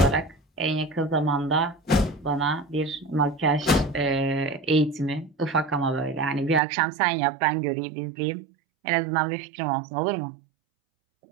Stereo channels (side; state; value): left; drops out; at 6.6 s